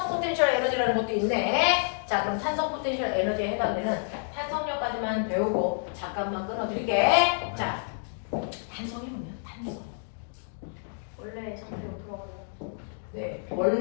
포텐셜 에너지라는 것도 있네. 자, 그럼 탄성 포텐셜 에너지에 해당되는 탄성력까지만 배우고 잠깐만 끊어드릴게. 자, 탄성이 뭐냐? 탄성. 원래 잠깐 들어가요. 네,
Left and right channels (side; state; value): right; silent; digital silence